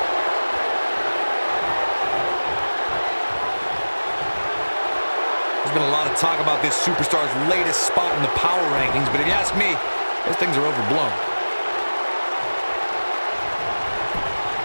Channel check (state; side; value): inverted; both; correlation -1.00